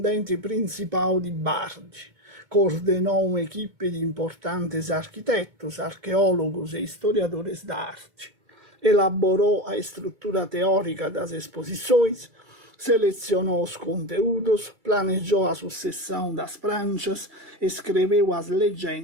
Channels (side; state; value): left; late; 2.2 ms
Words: principal de Bardi, coordenou uma equipe de importantes arquitetos, arqueólogos e historiadores da arte, elaborou a estrutura teórica das exposições, selecionou os conteúdos, planejou a sucessão das pranchas, escreveu as